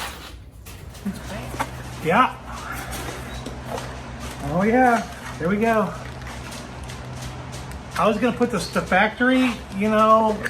Yeah. Oh yeah, there we go. I was gonna put the factory, you know,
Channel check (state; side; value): identical; both; correlation 1.00